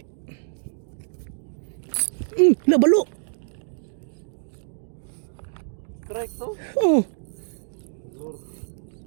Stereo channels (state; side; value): silent; left; digital silence